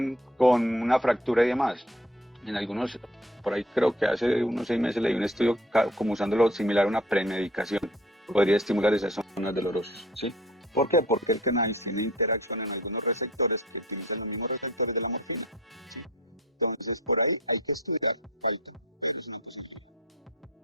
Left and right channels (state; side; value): normal; both; correlation 0.49